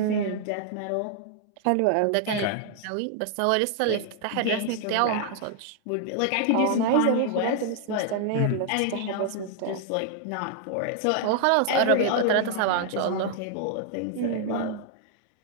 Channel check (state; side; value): different; both; correlation 0.00